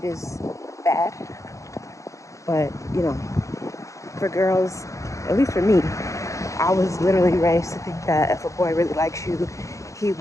is bad. But, you know, for girls, at least for me, I was literally raised to think that if a boy really likes you, he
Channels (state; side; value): late; right; 0.15 ms